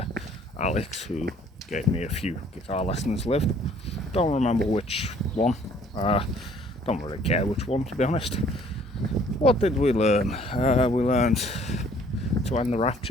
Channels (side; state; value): both; normal; correlation 0.58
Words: Alex, who gave me a few guitar lessons, lived. Don't remember which one. Don't really care which one, to be honest. What did we learn? We learned To End the